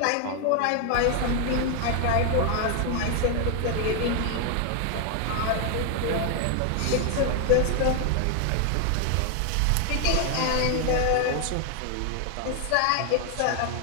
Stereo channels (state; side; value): different; both; correlation 0.00